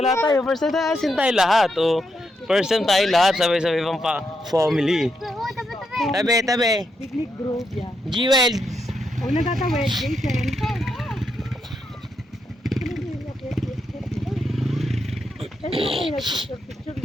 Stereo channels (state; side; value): normal; both; correlation 0.81